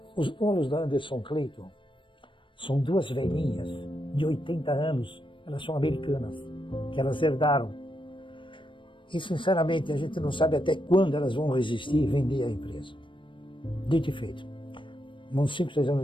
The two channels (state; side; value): late; right; 0.24 ms